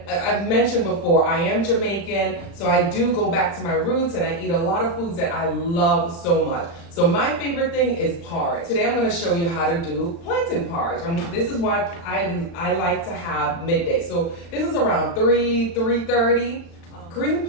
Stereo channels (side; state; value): right; late; 35 ms